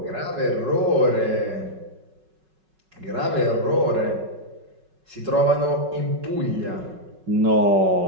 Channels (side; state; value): left; late; 5.4 ms